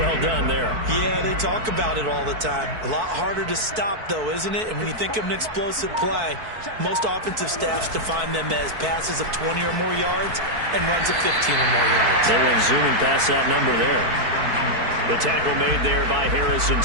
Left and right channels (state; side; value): late; left; 4.6 ms